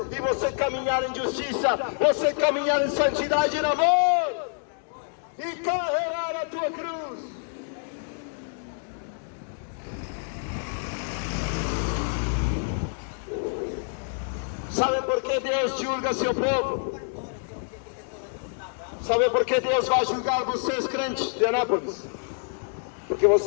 e você caminhar em justiça, você caminhar em santidade e em amor e carregar a tua cruz. Sabe por que Deus julga seu povo? Sabe por que Deus vai julgar vocês, crentes de Anápolis? Porque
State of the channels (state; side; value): silent; right; 60 dB below the other